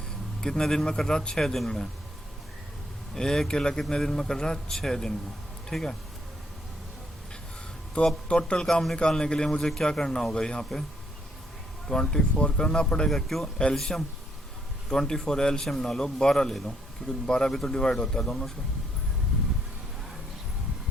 दिन में कर रहा, 6 दिन में। ए अकेला कितने दिन में कर रहा, 6 दिन में, ठीक है। तो अब टोटल काम निकालने के लिए मुझे क्या करना होगा, यहाँ पे 24 करना पड़ेगा। क्यों? एल्शियम 24 एल्शियम ना लो, 12 ले लो, क्योंकि 12 भी तो डिवाइड होता है दोनों से।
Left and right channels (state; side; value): normal; both; correlation 0.72